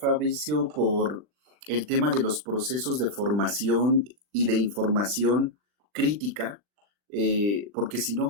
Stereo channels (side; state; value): left; late; 40 ms